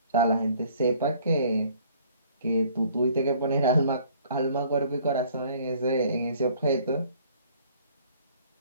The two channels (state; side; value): inverted; both; correlation -0.57